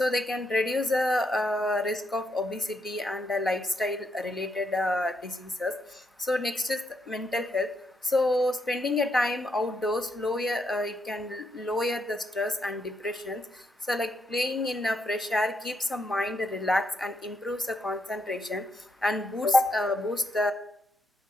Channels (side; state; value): both; normal; correlation 0.78